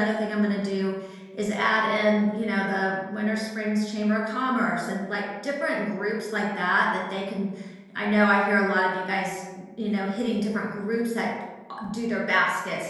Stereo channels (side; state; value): both; identical; correlation 1.00